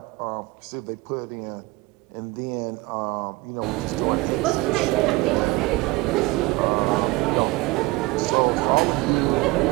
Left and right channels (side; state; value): left; quieter; 22.0 dB